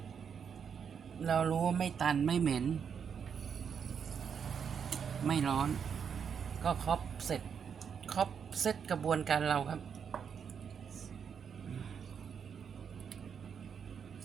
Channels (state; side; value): quieter; left; 7.1 dB